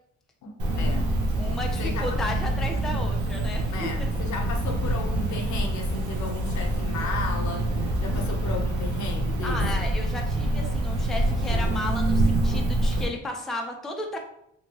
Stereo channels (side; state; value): both; normal; correlation 0.69